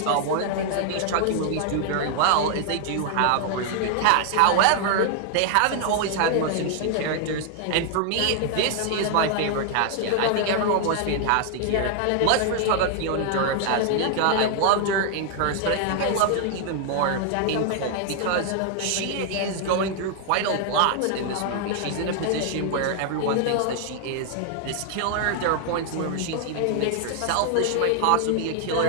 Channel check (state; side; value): different; both; correlation 0.00